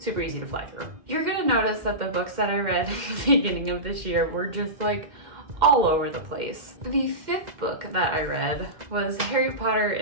easy to fly through. You're gonna notice that the books that I read at the beginning of this year were just like all over the place. The fifth book that I read was Harry Potter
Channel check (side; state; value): left; late; 2.1 ms